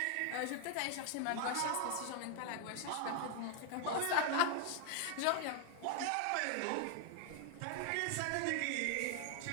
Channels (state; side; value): different; both; correlation 0.00